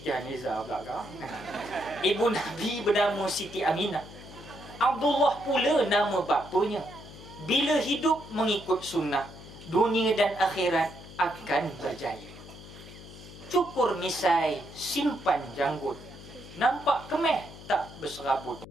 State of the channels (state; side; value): noise; left; hum, 16 dB below the sound